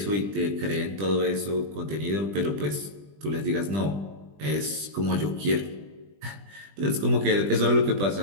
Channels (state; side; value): late; left; 20 ms